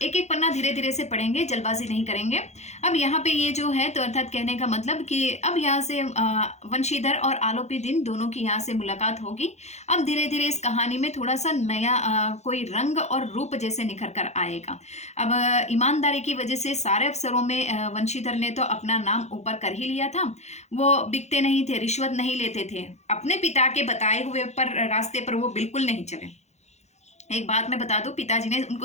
एक एक पन्ना धीरे धीरे से पढ़ेंगे, जल्दबाजी नहीं करेंगे। अब यहाँ पे ये जो है तो अर्थात कहने का मतलब कि अब यहाँ से वंशीधर और आलोपी दिन दोनों की यहाँ से मुलाकात होगी। अब धीरे धीरे इस कहानी में थोड़ा सा नया कोई रंग और रूप जैसे निखर कर आएगा। अब ईमानदारी की वजह से सारे अफसरों में वंशीधर ने तो अपना नाम ऊपर कर ही लिया था। वो बिकते नहीं थे, रिश्वत नहीं लेते थे, अपने पिता के बताए हुए रास्ते पर वो बिल्कुल नहीं चले। एक बात मैं बता दूं, पिताजी ने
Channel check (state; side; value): late; right; 0.32 ms